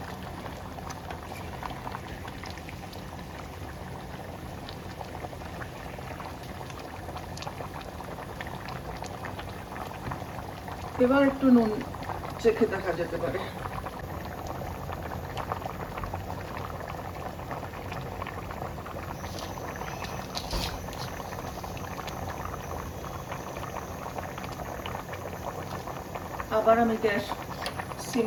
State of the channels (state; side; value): identical; both; correlation 1.00